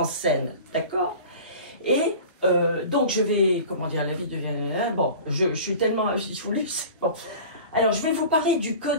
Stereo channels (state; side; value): inverted; both; correlation -0.39